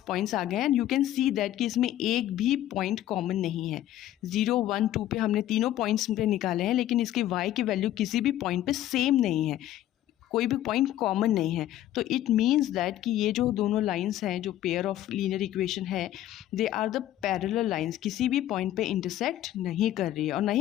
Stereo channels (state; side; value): quieter; right; 13.1 dB